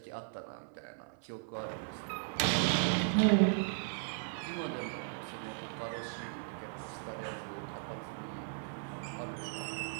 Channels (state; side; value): silent; left; 53 dB below the other